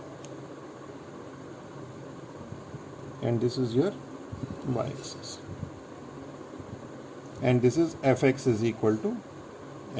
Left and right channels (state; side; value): identical; both; correlation 1.00